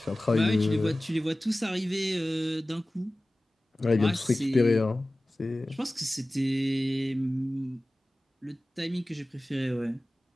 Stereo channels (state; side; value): normal; both; correlation 0.97